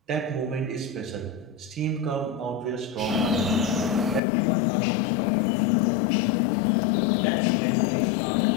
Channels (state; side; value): drops out; right; at 4.2 s